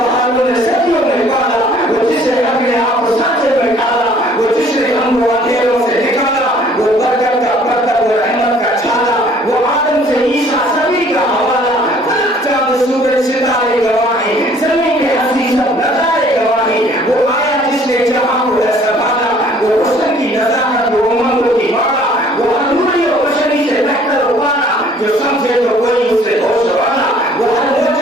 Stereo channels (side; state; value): both; normal; correlation 0.57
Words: نے صدیوں میں پالا, وہ جس نے اپنے آپ کو سانچے میں ڈالا, وہ جس نے ہم کو اندھیروں سے نکالا, وہ برکت کا پرتب و رحمت کا چھالا, وہ آدم سے عیسیٰ سبھی کا حوالہ, فلک چاند سورج ستارے گواہیں, زمین کے ہستی سب نظارے گواہیں, وہ آیا جس نے جہاں کو ہے سنبھالا, وہ حسن کی نزاکت وہ امنگوں کی مالا, وہ انوری و بشری سے بہتر ابانا, جو سمجھے تو کوئی اس سے ہوش والا, وہ ہر